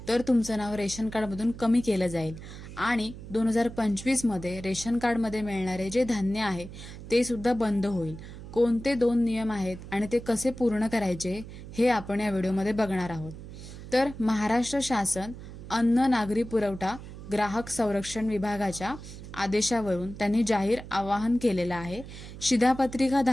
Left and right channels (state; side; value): noise; right; hum, 13 dB below the sound